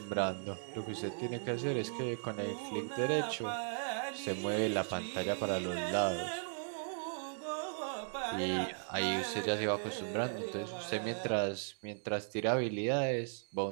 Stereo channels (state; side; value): silent; left; 53 dB below the other